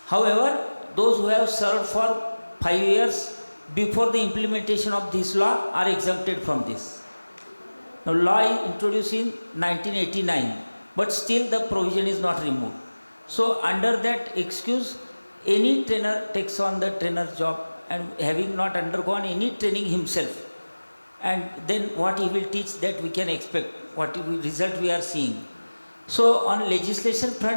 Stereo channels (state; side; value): inverted; both; correlation -1.00